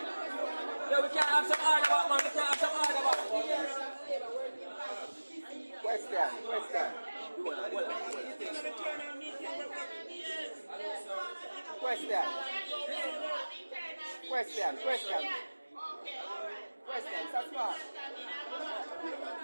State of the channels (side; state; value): both; inverted; correlation -1.00